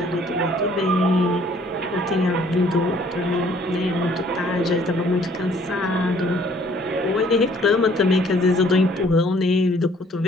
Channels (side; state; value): both; normal; correlation 0.59